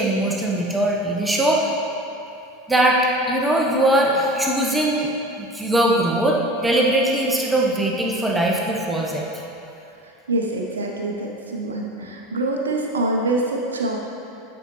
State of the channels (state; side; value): normal; both; correlation 0.37